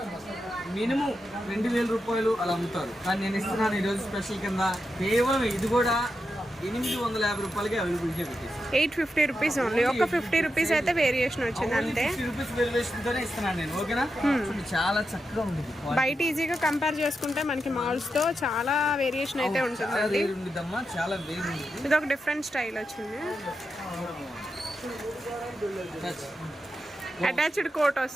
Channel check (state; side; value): normal; both; correlation 0.87